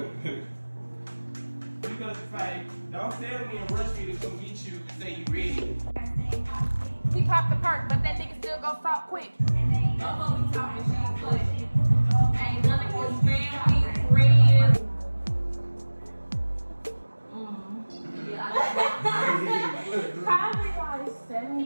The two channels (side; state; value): both; inverted; correlation -1.00